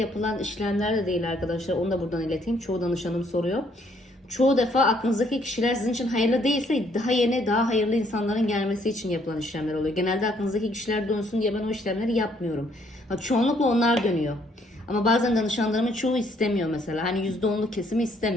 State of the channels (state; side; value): normal; both; correlation 0.67